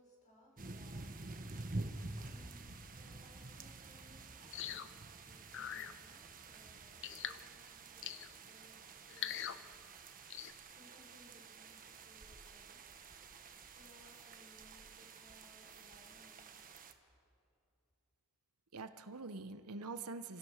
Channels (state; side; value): normal; both; correlation 0.38